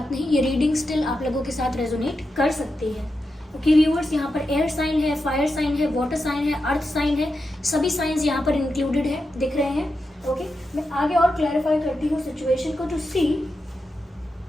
नहीं, ये रीडिंग स्टिल आप लोगों के साथ रेजोनेट कर सकती है। ओके व्यूअर्स, यहाँ पर एयर साइन है, फायर साइन है, वाटर साइन है, अर्थ साइन है, सभी साइंस यहाँ पर इंक्लूडेड है, दिख रहे हैं। ओके, मैं आगे और क्लैरिफाई करती हूँ सिचुएशन को टू सी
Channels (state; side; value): normal; both; correlation 0.88